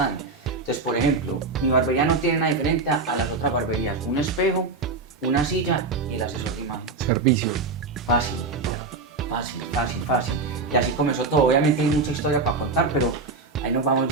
Entonces, por ejemplo, mi barbería no tiene nada diferente a las otras barberías. Un espejo, una silla y el asesor de imagen. Servicio. Fácil. Y así comenzó todo. Obviamente hay mucha historia para contar, pero ahí nos vamos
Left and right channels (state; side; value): quieter; left; 3.9 dB